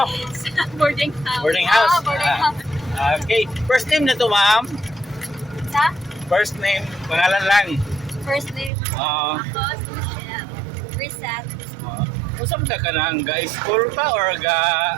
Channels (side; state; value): left; drops out; at 8.7 s